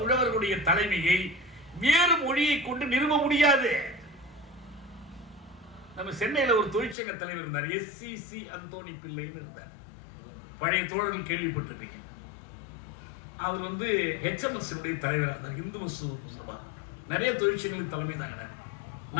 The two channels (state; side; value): drops out; right; at 7.0 s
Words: உழவர்களுடைய தலைமையை வேறு மொழியை கொண்டு நிறுவ முடியாது. நம்ம சென்னையில் ஒரு தொழிற்சங்க தலைவர் இருந்தார், SCC அந்தோணி பிள்ளைன்னு இருந்தார். பழைய தோழர்கள் கேள்விப்பட்டிருப்பீங்க. அவர் HMS தலைவராக இருந்தார், இந்து மசூர் சபா. நிறைய தொழிற்சங்களுக்கு தலைமை தாங்க.